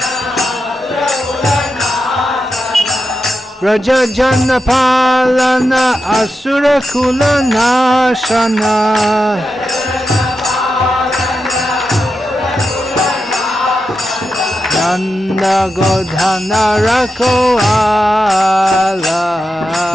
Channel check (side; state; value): both; normal; correlation 0.89